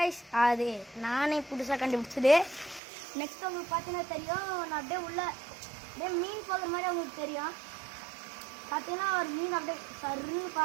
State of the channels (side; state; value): left; drops out; at 2.8 s